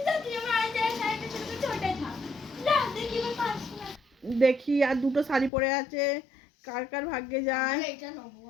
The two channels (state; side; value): drops out; right; at 5.5 s